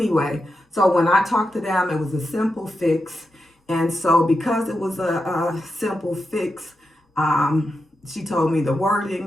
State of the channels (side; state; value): both; normal; correlation 0.88